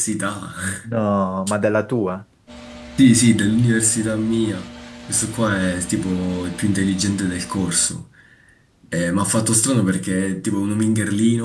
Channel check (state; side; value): identical; both; correlation 1.00